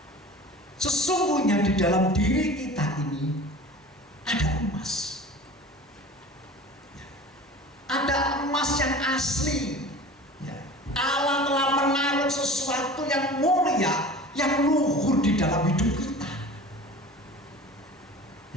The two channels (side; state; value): both; normal; correlation 0.39